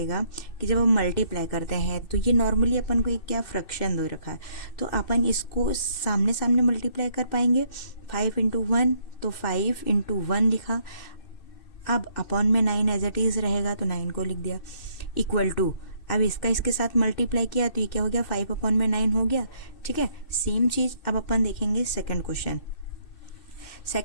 कि जब हम मल्टीप्लाई करते हैं तो ये नॉर्मली अपन को एक क्या फ्रैक्शन दे रखा है, तो अपन इसको सामने सामने मल्टीप्लाई कर पाएंगे। 5 इंटू 1 तो 5 इंटू 1 लिखा। अब अपॉन में 9 एज इट इज रहेगा तो 9 को लिख दिया, इक्वल टू अब इसका इसके साथ मल्टीप्लाई किया तो ये क्या हो गया, 5 अपॉन में 9 हो गया। ठीक है, सेम चीज अब अपन देखेंगे सेकंड क्वेश्चन।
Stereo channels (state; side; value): late; right; 2.6 ms